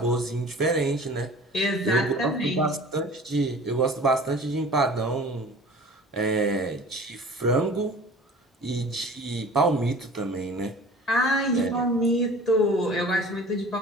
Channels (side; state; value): both; normal; correlation 0.43